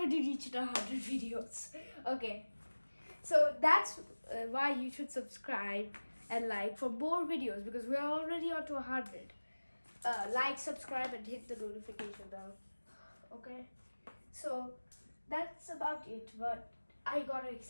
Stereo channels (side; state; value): both; inverted; correlation -1.00